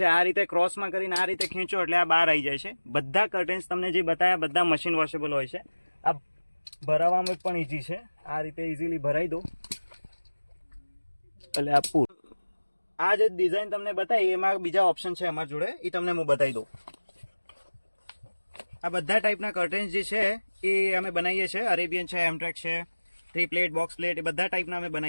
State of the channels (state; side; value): inverted; both; correlation -1.00